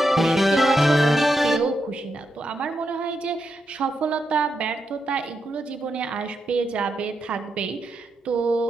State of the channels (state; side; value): normal; both; correlation 0.84